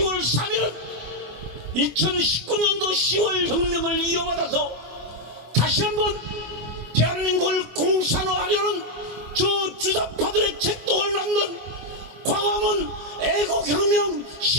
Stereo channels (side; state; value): left; late; 24 ms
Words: 3일은 2019년도 10월 혁명을 이어받아서 다시 한번 대한민국을 공산화하려는 저 주사파들의 책동을 낳는 광화문 애국혁명